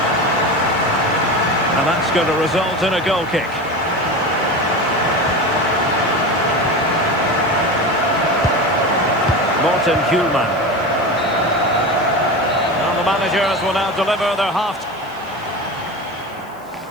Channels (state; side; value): noise; left; hiss, 27 dB below the sound